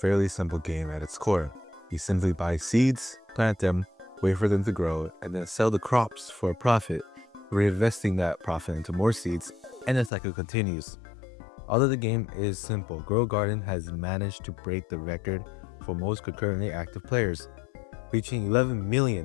simple game at its core. You simply buy seeds, plant them, wait for them to grow, and then sell the crops for a profit, reinvesting that profit into more seeds, and the cycle continues. Although the game is simple, Grow a Garden has managed to break the record for most concurrently active players, reaching 11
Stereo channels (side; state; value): right; drops out; at 10.1 s